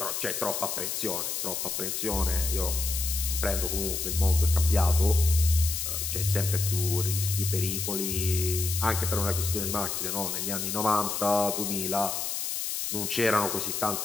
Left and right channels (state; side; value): noise; left; hiss, 2 dB below the sound